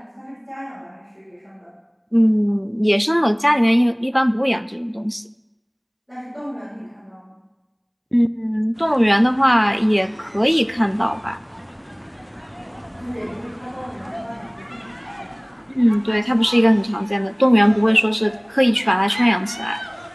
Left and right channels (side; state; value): both; identical; correlation 1.00